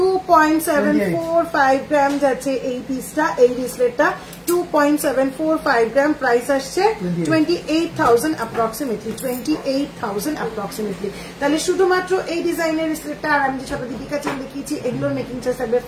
গ্রাম যাচ্ছে এই পিসটা, এই রিসলেটটা 2.745 গ্রাম। প্রাইস আসছে 28,000 অ্যাপ্রক্সিমেটলি, 28,000 অ্যাপ্রক্সিমেটলি। তাহলে শুধুমাত্র এই ডিজাইনের রিসলেটটা আর আমি যে সব দীপিকা চেন দেখিয়েছি এগুলোর মেকিং চার্জ থাকবে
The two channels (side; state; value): both; identical; correlation 1.00